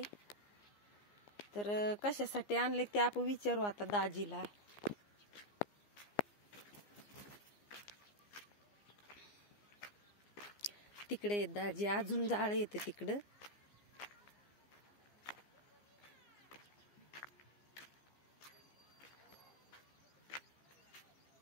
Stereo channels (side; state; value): right; late; 15 ms